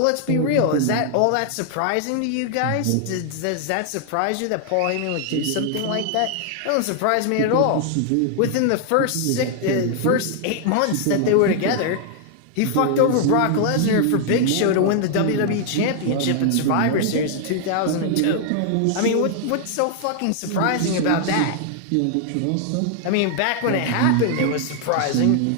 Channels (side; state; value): both; different; correlation 0.00